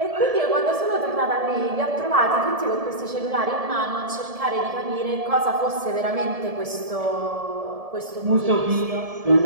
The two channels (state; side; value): late; left; 1.7 ms